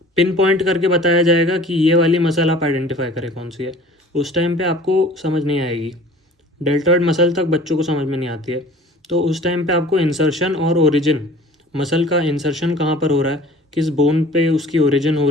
पिन पॉइंट करके बताया जाएगा कि ये वाली मसल आप आइडेंटिफाई करें कौन सी है। उस टाइम पे आपको समझ नहीं आएगी। डेल्टॉइड मसल तक बच्चों को समझ में नहीं आती है। तो उस टाइम पे आपको इंसर्शन और ओरिजिन, मसल का इंसर्शन कहाँ पर हो रहा है, किस बोन पे उसकी ओरिजिन हो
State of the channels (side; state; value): both; normal; correlation 0.46